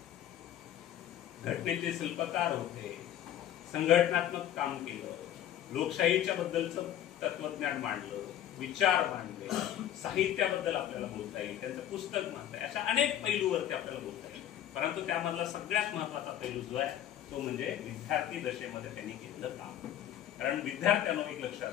घटनेचे शिल्पकार होते, संघटनात्मक काम केलं, लोकशाहीच्या बद्दलचं तत्वज्ञान मांडलं, विचार मांडले, साहित्याबद्दल आपल्याला बोलता येईल, त्यांचं पुस्तक मांडता येईल, अशा अनेक पैलूवरती आपल्याला बोलता येईल. परंतु त्यामधला सगळ्यात महत्वाचा पैलू जो आहे तो म्हणजे विद्यार्थी दशेमध्ये त्यांनी केलेलं काम. कारण विद्यार्थ्यांनो एक लक्षात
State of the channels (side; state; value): right; quieter; 11.3 dB